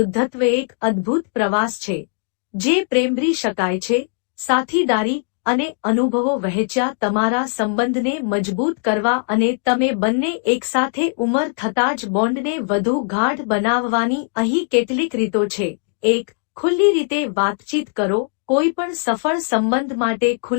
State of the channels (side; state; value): right; silent; digital silence